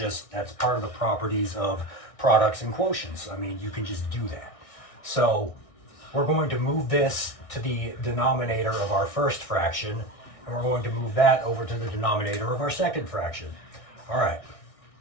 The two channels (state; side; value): late; right; 1.6 ms